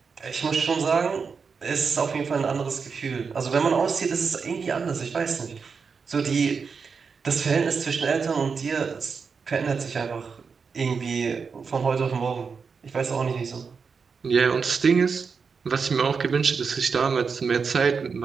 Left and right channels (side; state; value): left; quieter; 5.5 dB